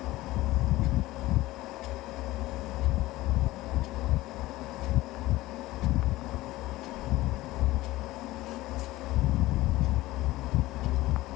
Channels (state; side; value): quieter; right; 17.8 dB